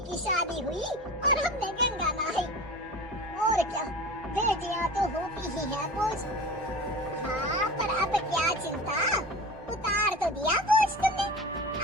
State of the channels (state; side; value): normal; both; correlation 0.34